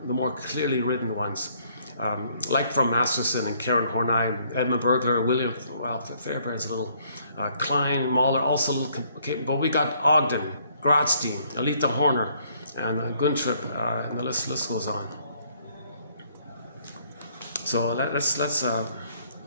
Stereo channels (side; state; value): both; inverted; correlation -0.66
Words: the more clearly written ones, like from Masterson and Karen Horney, Edmund Bergler, William Fairbairn's a little, Klein, Mahler, also a little, okay, but we got Ogden, Grotstein, Alita Horner, and Guntrip, and the list goes on. So let's